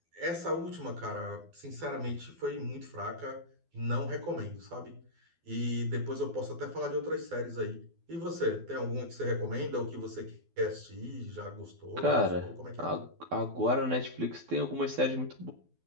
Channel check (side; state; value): left; late; 12 ms